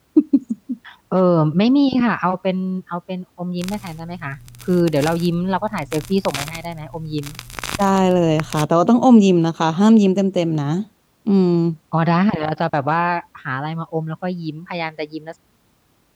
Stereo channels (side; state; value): both; identical; correlation 1.00